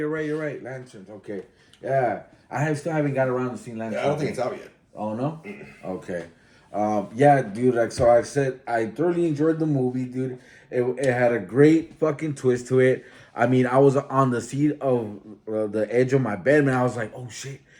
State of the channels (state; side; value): identical; both; correlation 1.00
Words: Lanterns. Okay. Yeah, still haven't got around to seeing Lanterns. Yeah, I don't think it's out yet. Oh no. Okay. Yeah, dude. Like so, I said, I thoroughly enjoyed the movie, dude. It had a great fucking twist to it. I mean, I was on the seat of the edge of my bed, man. I was like, oh shit.